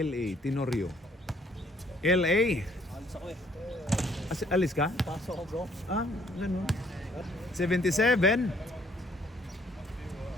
Tenorio. L.A. Alis ka? Pasok ko, bro. Ganun. 77.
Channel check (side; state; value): both; normal; correlation 0.63